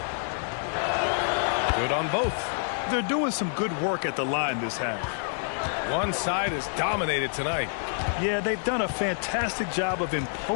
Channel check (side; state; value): right; silent; digital silence